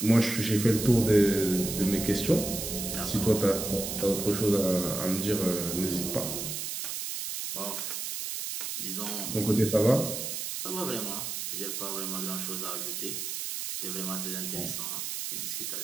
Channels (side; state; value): right; noise; hiss, 4 dB below the sound